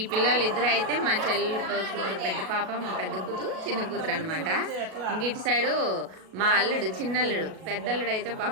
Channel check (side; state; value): left; late; 37 ms